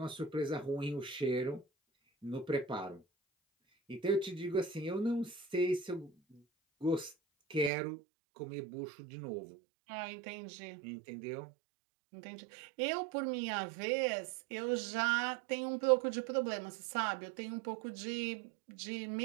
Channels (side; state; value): left; drops out; at 7.7 s